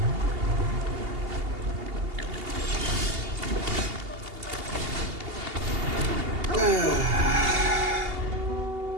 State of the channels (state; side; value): late; left; 2.8 ms